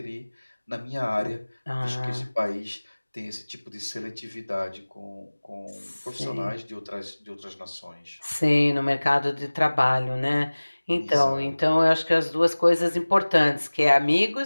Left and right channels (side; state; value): both; inverted; correlation -1.00